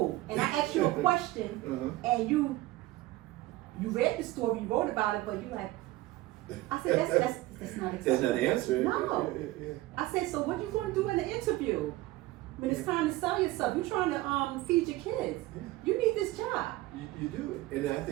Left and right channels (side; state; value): left; quieter; 18.0 dB